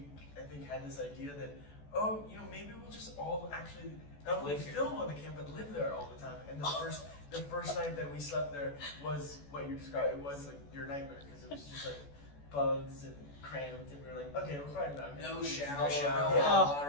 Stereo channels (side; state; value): right; late; 14 ms